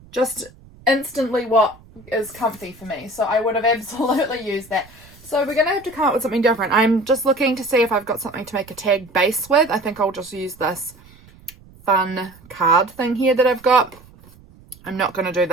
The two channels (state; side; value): noise; right; rumble, 24 dB below the sound